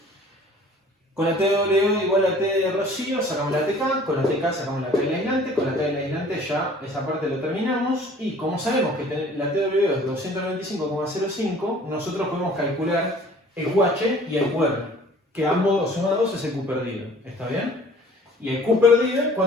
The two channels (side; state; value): both; normal; correlation 0.51